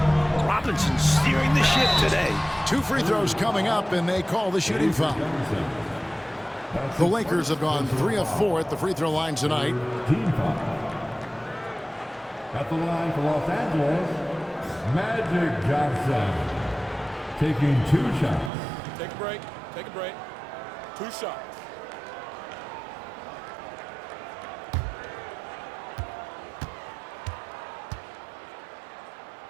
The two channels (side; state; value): left; drops out; at 18.5 s